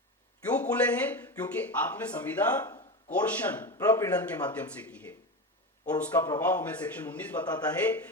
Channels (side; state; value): both; normal; correlation 0.21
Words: क्यों खुले हैं? क्योंकि आपने संविदा कोर्शन प्रपीड़न के माध्यम से की है, और उसका प्रभाव हमें सेक्शन 19 बताता है